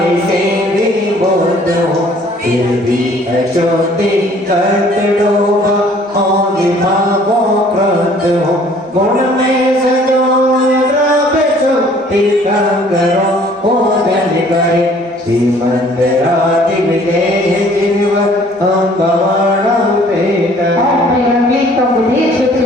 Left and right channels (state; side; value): normal; both; correlation 0.56